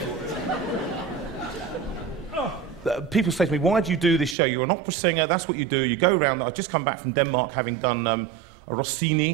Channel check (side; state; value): left; drops out; at 4.4 s